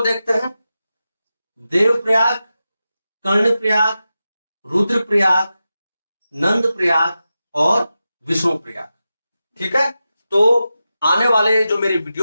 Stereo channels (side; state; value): both; inverted; correlation -0.92